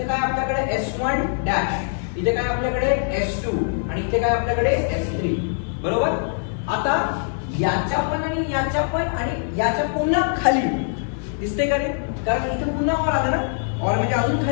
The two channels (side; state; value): right; silent; digital silence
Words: काय आपल्याकडे S1 डॅश, इथे काय आपल्याकडे S2 आणि इथे काय आपल्याकडे S3, बरोबर. आता याच्या पण आणि याच्या पण आणि याच्या पुन्हा खाली दिसते का रे, कारण इथे पुन्हा ऑर आलं ना, ऑर म्हणजे अजून